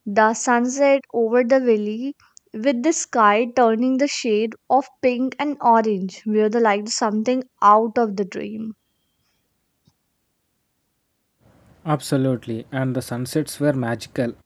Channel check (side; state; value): both; identical; correlation 1.00